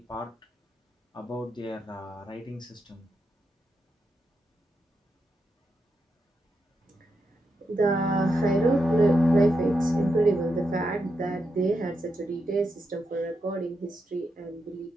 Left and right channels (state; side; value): normal; both; correlation 0.85